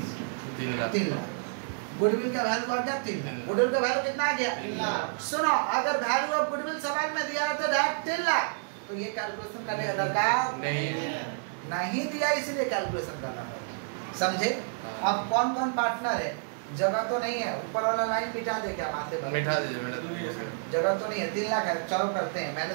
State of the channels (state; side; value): silent; left; 58 dB below the other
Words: लाख। गुडविल का वैल्यू आ गया 3 लाख, गुडविल का वैल्यू कितना आ गया 3 लाख। सुनो अगर वैल्यू ऑफ गुडविल सवाल में दिया रहता डायरेक्ट 3 लाख तो ये कैलकुलेशन करने का दरकार नहीं दिया, इसीलिए कैलकुलेशन करना पड़ता, समझे। अब कौन कौन पार्टनर है, जगह तो नहीं है, ऊपर वाला लाइन मिटा दे क्या माथे पर, मिटा दीजिए, जगह तो नहीं है, 3 लाख है, चलो करते हैं